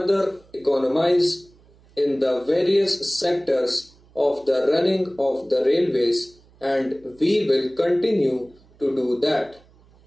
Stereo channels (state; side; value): noise; right; hum, 29 dB below the sound